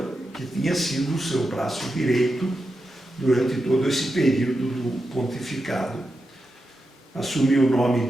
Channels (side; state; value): both; normal; correlation 0.88